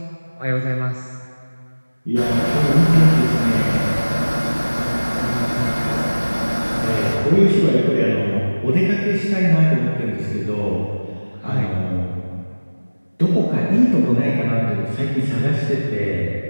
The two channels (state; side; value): inverted; both; correlation -1.00